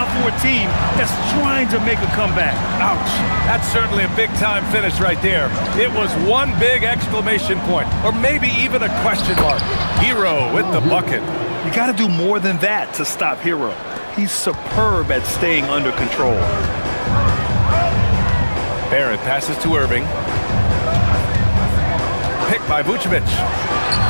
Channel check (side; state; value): both; inverted; correlation -1.00